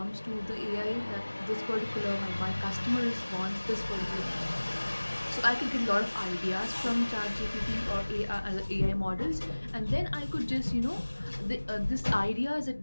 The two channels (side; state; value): both; inverted; correlation -1.00